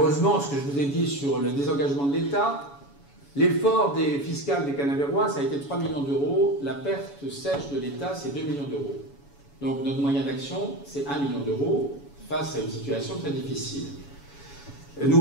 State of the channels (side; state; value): right; late; 7.1 ms